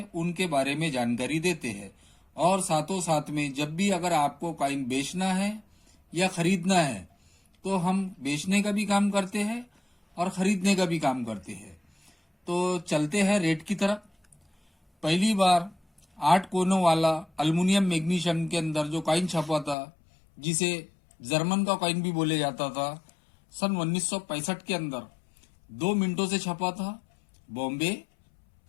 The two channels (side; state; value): right; drops out; at 19.8 s